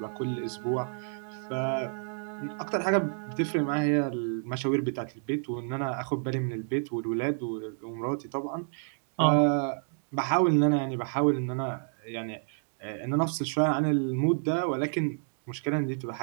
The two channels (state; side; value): silent; left; 58 dB below the other